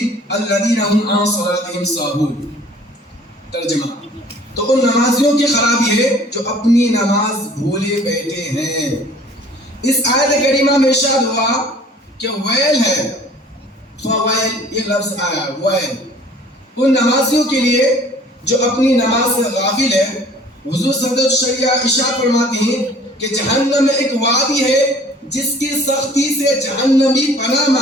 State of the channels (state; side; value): normal; both; correlation 0.51